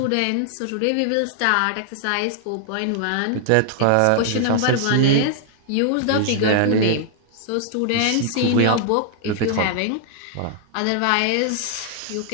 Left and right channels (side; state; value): both; different; correlation 0.00